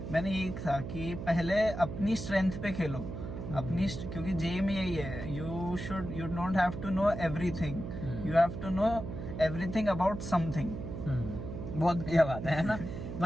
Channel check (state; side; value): noise; right; hum, 7 dB below the sound